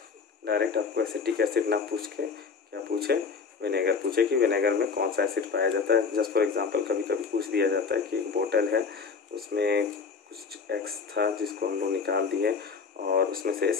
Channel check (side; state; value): right; quieter; 5.2 dB